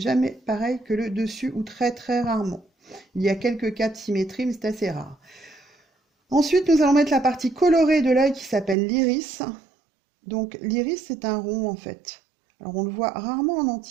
pareil que le dessus, ou très très rarement. Il y a quelques cas de symétrie, mais c'est assez rare. Ensuite, nous allons mettre la partie colorée de l'œil qui s'appelle l'iris. Donc l'iris, c'est un rond en fait. Alors on le voit rarement en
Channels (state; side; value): drops out; left; at 8.8 s